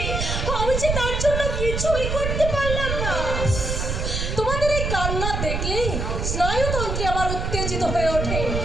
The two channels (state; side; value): noise; right; rumble, 2 dB below the sound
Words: আমি যে তার জন্য কিছুই করতে পারলাম না। তোমাদের এই কান্না দেখলেই স্নায়ুতন্ত্রে আমার উত্তেজিত হয়ে ওঠে।